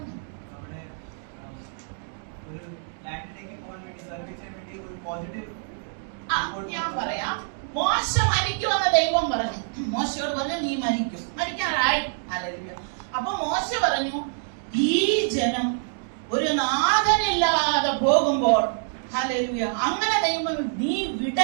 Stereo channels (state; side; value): silent; left; digital silence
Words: ഞാൻ പറയാം. മോശ മരിക്കുമെന്ന് ദൈവം പറഞ്ഞു. മോശയോട് പറഞ്ഞു, നീ മരിക്കും. മരിക്കാറായി. ഹല്ലേലൂയ. അപ്പൊ മോശ പറഞ്ഞു, ഈ ജനം ഒരു നാഥനില്ലാതെ പോകുമ്പോൾ, ഹല്ലേലൂയ, അങ്ങനെ ദൈവം നീ